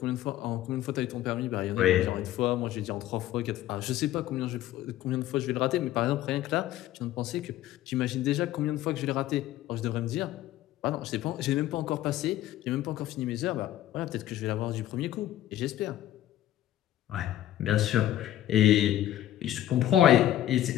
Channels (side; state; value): right; quieter; 13.2 dB